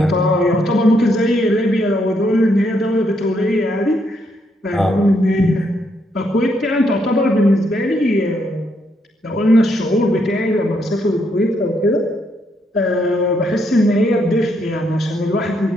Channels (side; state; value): both; normal; correlation 0.76